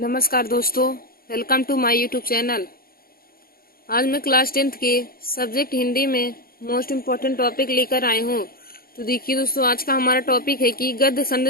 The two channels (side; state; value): right; late; 0.43 ms